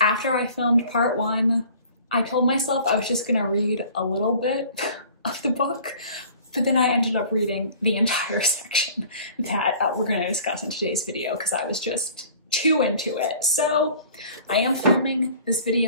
after I filmed part 1, I told myself I was just gonna read a little bit of the book, but then I ended up reading the entire section that we're gonna discuss in today's video because I was just too into it. So I am filming this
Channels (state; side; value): inverted; both; correlation -0.48